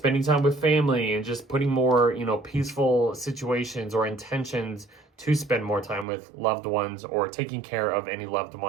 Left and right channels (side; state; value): left; drops out; at 6.1 s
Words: time with family and just putting more, peaceful situations or intentions to spend more time with loved ones or taking care of any loved